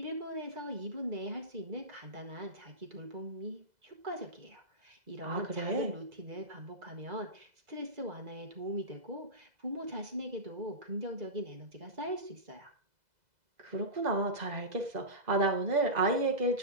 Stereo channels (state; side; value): late; left; 2.0 ms